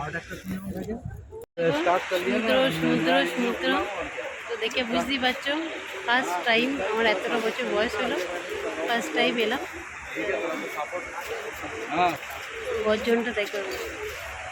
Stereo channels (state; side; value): identical; both; correlation 1.00